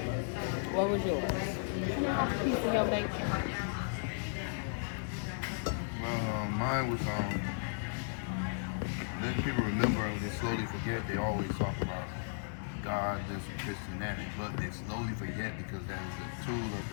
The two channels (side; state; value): right; silent; digital silence